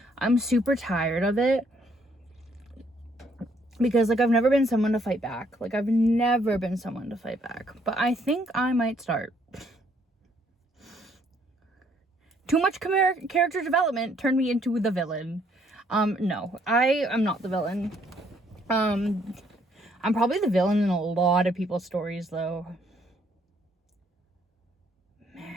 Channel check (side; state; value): both; normal; correlation 0.68